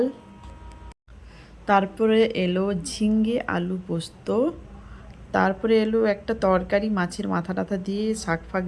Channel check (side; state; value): both; identical; correlation 1.00